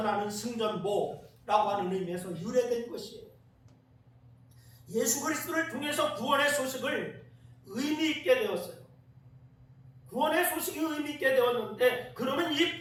승전보라고 하는 의미에서 유래된 것이에요. 예수 그리스도를 통해서 구원의 소식을 의미 있게 되었어요. 구원의 소식이 의미 있게 되었는데, 그러면 이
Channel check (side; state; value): both; identical; correlation 1.00